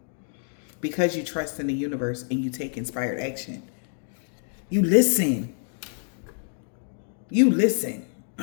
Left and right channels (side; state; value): right; silent; digital silence